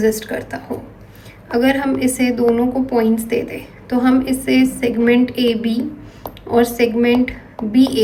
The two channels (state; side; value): identical; both; correlation 1.00